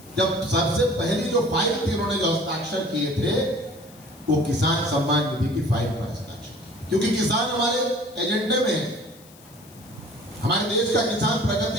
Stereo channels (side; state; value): left; noise; hiss, 24 dB below the sound